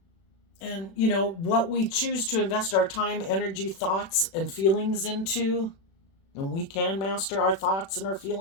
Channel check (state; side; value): late; right; 36 ms